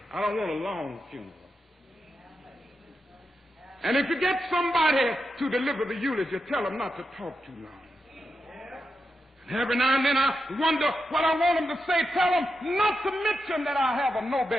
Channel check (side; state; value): both; normal; correlation 0.88